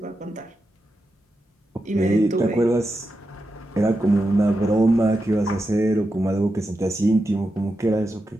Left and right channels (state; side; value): normal; both; correlation 0.88